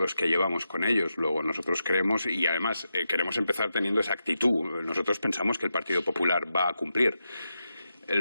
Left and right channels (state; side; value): inverted; both; correlation -0.87